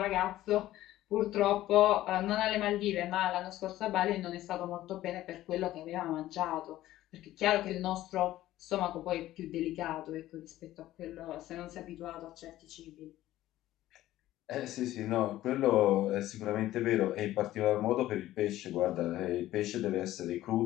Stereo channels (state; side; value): quieter; right; 14.7 dB